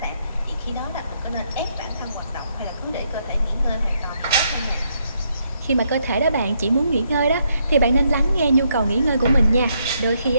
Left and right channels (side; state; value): both; inverted; correlation -0.75